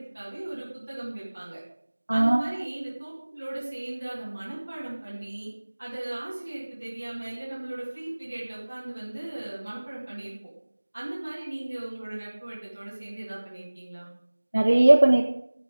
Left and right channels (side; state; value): both; inverted; correlation -1.00